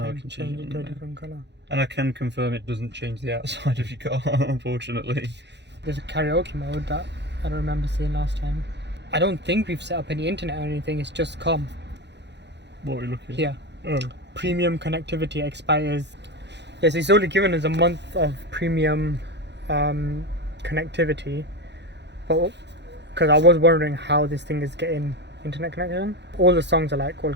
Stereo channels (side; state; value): left; late; 0.50 ms